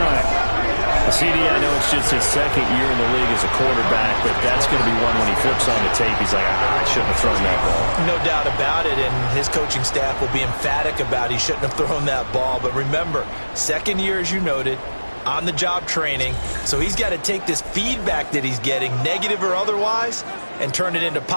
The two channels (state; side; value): inverted; both; correlation -1.00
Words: CD, I know it's just his 2nd year in the league as a quarterback, but that's going to be one when he flips on the tape, he's like, I shouldn't have thrown that ball. No doubt about it, and his coaching staff will be emphatic about he shouldn't have thrown that ball. But remember, 2nd year, as you noted, on-the-job training, so he's got to take this feedback that he's getting, negative or otherwise, and turn it into